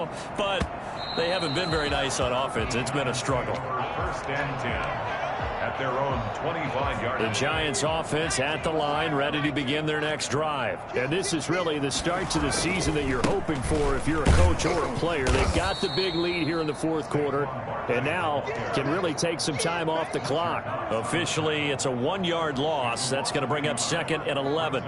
but they haven't been very nice on offense. It's been a struggle. 1st and 10. At their own 25-yard line. The Giants offense at the line, ready to begin their next drive. And this is really the start to the season that you're hoping for if you're a coach or a player. They've got the big lead here in the 4th quarter, and now can really take some time off the clock. Officially, it's a 1-yard loss. That's going to bring up 2nd and 11.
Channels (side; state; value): both; identical; correlation 1.00